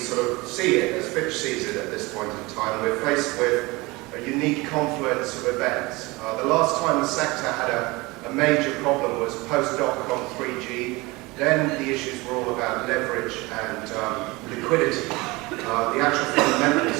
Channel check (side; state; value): left; quieter; 23.3 dB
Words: of see it, as Fitch sees it at this point in time, we're faced with a unique confluence of events. The last time the sector had a major problem was post-dot-com 3G. Then the issues were all about leverage and liquidity. The actual